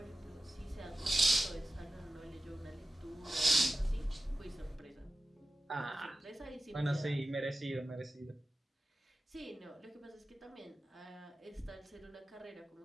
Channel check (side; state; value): both; normal; correlation 0.94